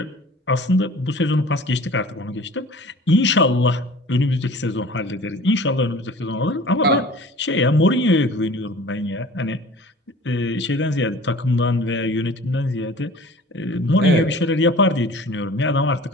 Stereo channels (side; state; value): both; normal; correlation 0.44